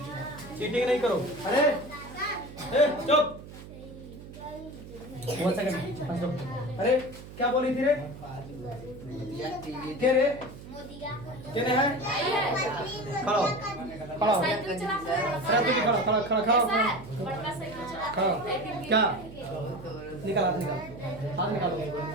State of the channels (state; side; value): noise; right; hum, 15 dB below the sound